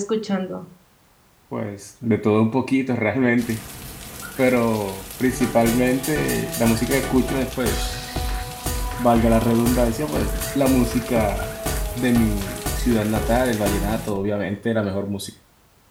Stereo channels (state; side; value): identical; both; correlation 1.00